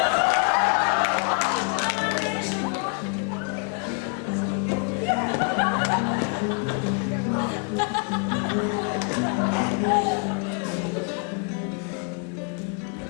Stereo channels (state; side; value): quieter; right; 39.5 dB